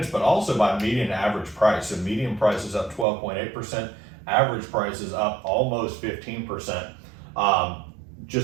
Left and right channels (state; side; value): drops out; left; at 3.1 s